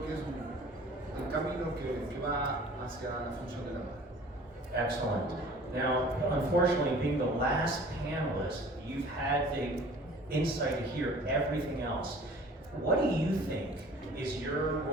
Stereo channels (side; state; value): both; normal; correlation 0.47